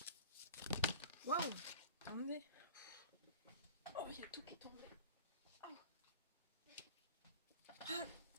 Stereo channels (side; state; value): both; inverted; correlation -0.38